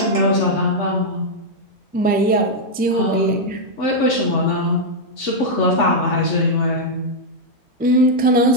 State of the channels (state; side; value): normal; both; correlation -0.03